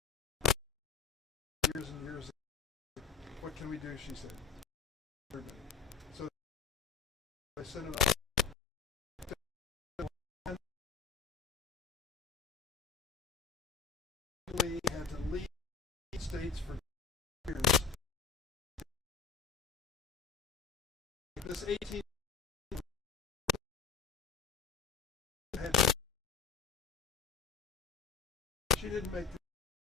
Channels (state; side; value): quieter; right; 6.3 dB